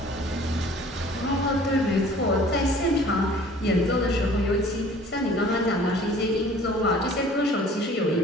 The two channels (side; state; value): both; normal; correlation 0.50